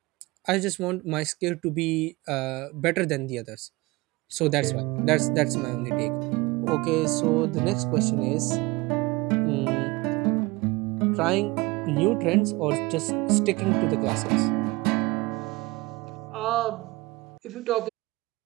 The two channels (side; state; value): left; quieter; 22.7 dB